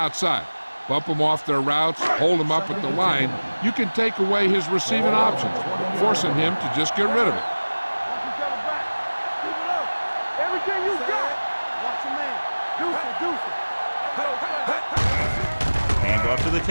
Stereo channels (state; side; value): inverted; both; correlation -1.00